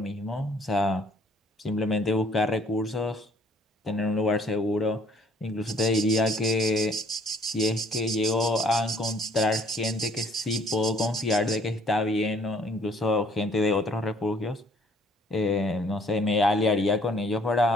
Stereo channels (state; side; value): normal; both; correlation 0.61